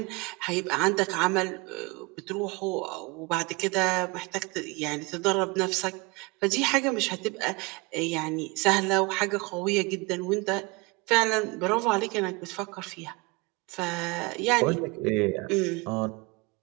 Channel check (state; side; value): quieter; left; 26.4 dB